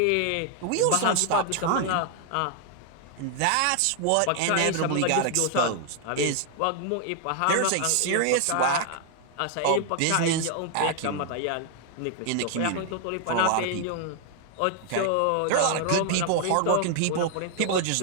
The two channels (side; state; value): both; different; correlation 0.00